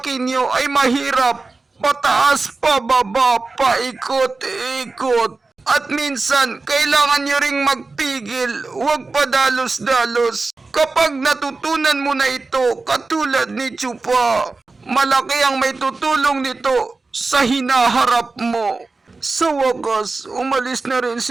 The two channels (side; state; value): left; quieter; 3.8 dB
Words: nyo ay mahirap. Pataas, pababa, paikot-ikot. At minsan, kailangan nyo ring magpigil, huwag padalos-dalos. Kapag natutunan mo na ito, katulad ni Chupa, malaki ang may tutulong nito sa hinaharap mo. Sa wakas, umalis na rin